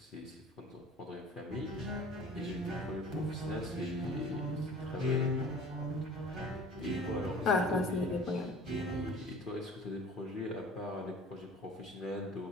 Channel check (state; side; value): normal; both; correlation 0.45